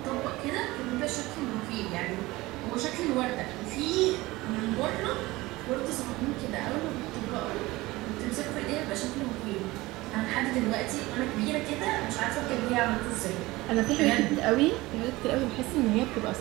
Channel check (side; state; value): left; quieter; 20.0 dB